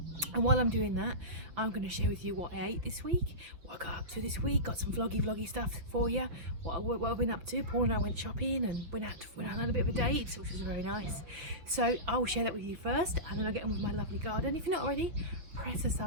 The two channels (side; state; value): left; late; 6.2 ms